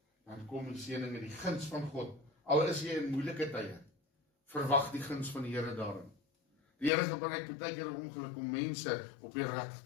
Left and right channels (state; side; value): drops out; right; at 6.9 s